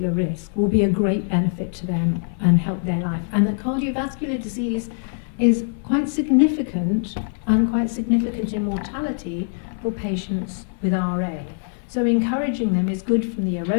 risk will be a great benefit to them and help their life. And that cardiovascular disease is quite significant, and quite significant in mortality for patients with RA. So encouraging them is good from the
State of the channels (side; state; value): right; silent; 64 dB below the other